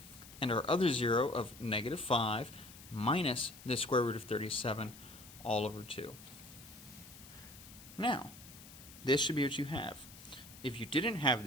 and our other zero of -5 minus the square root of 37 all over 2. Now, this should be what you have. If you didn't have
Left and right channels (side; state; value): left; noise; hiss, 18 dB below the sound